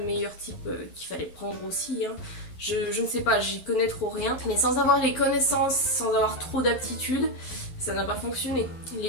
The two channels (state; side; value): late; right; 12 ms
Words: type qu'il fallait prendre aussi, hein. Je ne sais pas, j'y connais trop rien. Mais sans avoir les connaissances, sans avoir trop d'aptitude, ça n'a pas fonctionné.